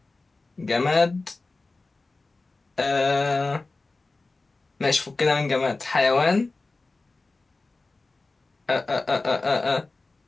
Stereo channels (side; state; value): right; quieter; 3.5 dB